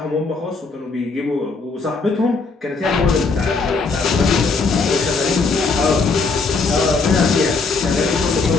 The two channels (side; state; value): right; quieter; 4.2 dB